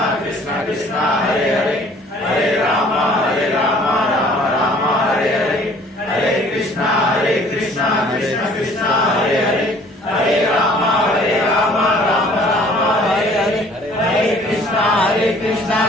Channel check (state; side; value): normal; both; correlation 0.54